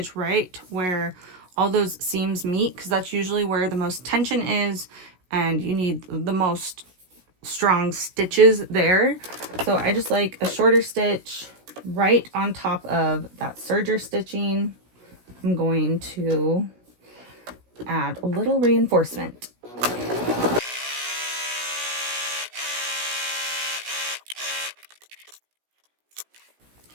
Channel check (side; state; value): left; late; 16 ms